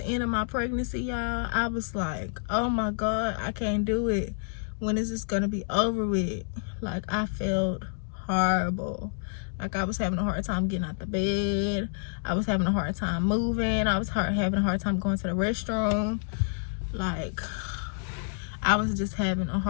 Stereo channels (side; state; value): right; silent; digital silence